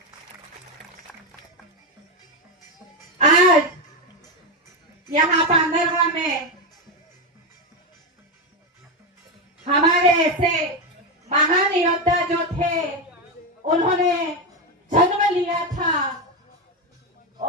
आज यहाँ पांडरवा में हमारे ऐसे महान योद्धा जो थे, उन्होंने जन्म लिया था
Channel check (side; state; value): both; normal; correlation 0.10